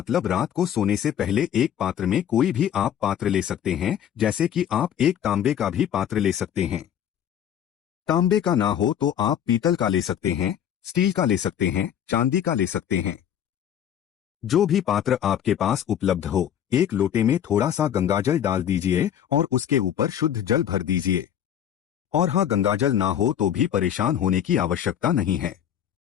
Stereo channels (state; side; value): quieter; right; 9.8 dB